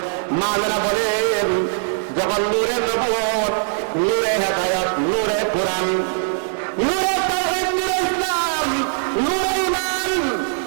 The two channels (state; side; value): silent; left; digital silence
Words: মায়েরা বলেন, যখন নূরে নবুয়ত, নূরে হেদায়েত, নূরে কোরআন, নূরে তাওহীদ, নূরে ইসলাম, নূরে ঈমান